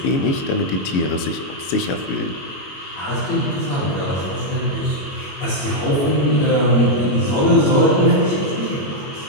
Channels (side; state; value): right; late; 22 ms